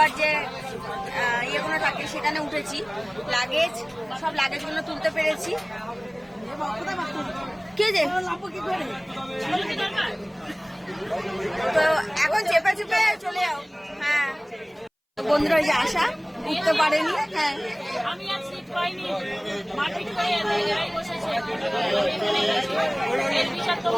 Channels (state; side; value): identical; both; correlation 1.00